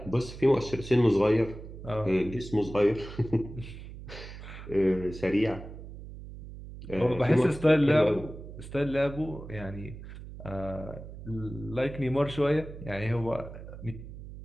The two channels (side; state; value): right; noise; hum, 13 dB below the sound